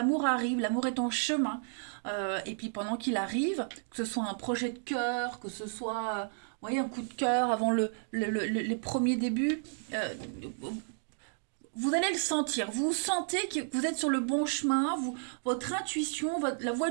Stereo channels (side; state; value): left; silent; 56 dB below the other